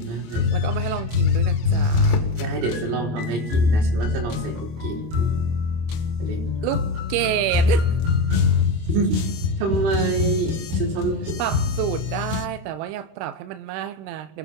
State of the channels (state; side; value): late; left; 25 ms